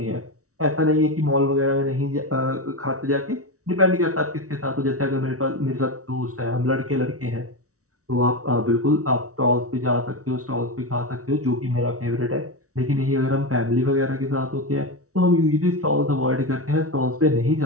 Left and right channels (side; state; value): left; late; 0.65 ms